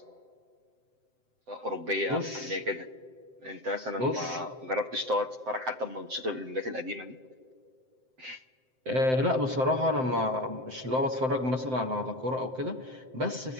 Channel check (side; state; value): left; late; 7.7 ms